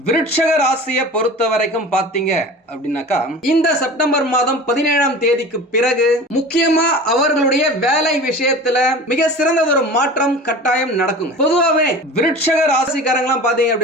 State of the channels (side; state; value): both; normal; correlation 0.37